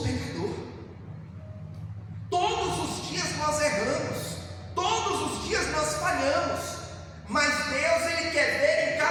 pecador. Todos os dias nós erramos, todos os dias nós falhamos, mas Deus, ele quer ver em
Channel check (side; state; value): both; identical; correlation 1.00